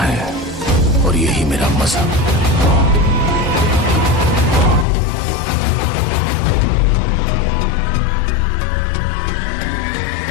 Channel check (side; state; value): right; drops out; at 4.9 s